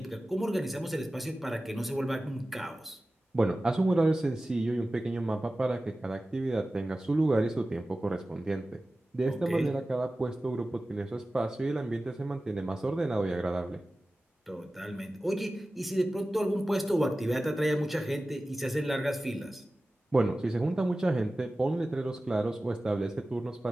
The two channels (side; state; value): both; normal; correlation 0.96